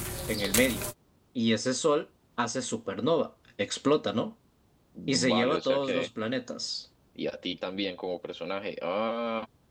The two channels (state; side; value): identical; both; correlation 1.00